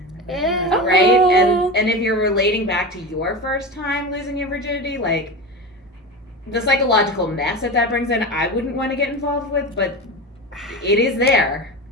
Yeah. Right? Oh. And if you're relating back to your first time losing your virginity, like the psychological mess that brings in, I wouldn't want to get involved with, but it is there.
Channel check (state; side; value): normal; both; correlation 0.25